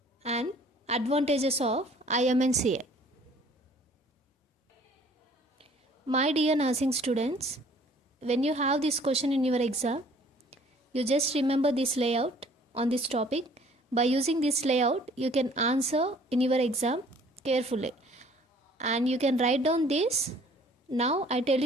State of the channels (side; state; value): both; normal; correlation 0.55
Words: and advantages of IMNCI. My dear nursing students, when you have this question in your exam, you just remember this layout on this topic. By using this layout, you can answer in your exam carefully. And you can write down this. Now I tell